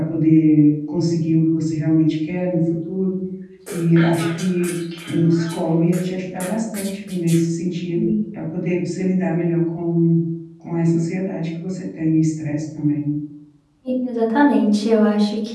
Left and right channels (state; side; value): identical; both; correlation 1.00